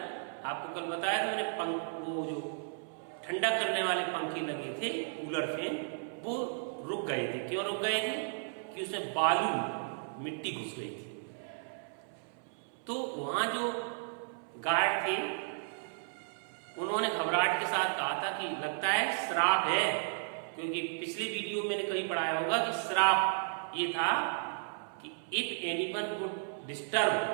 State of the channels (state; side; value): silent; left; 55 dB below the other